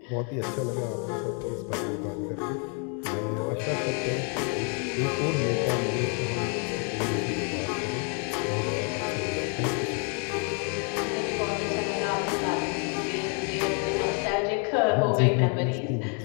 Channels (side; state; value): right; quieter; 39.0 dB